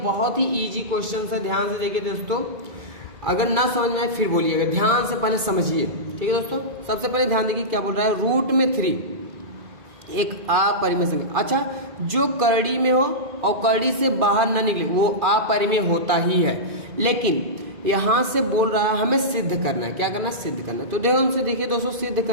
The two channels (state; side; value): late; left; 2.5 ms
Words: बहुत ही ईजी क्वेश्चन है, ध्यान से देखिए दोस्तों। अगर ना समझ में आए फिर बोलिएगा, ध्यान से पहले समझिए, ठीक है दोस्तों। सबसे पहले ध्यान देखिए क्या बोल रहा है, रूट में 3 एक अपरिमेय संख्या। अच्छा, जो करड़ी में हो और करड़ी से बाहर न निकले वो अपरिमेय होता ही है, लेकिन यहां से बोल रहा है हमें सिद्ध करना है। क्या करना है? सिद्ध करना है। तो ध्यान से देखिए दोस्तों, सिद्ध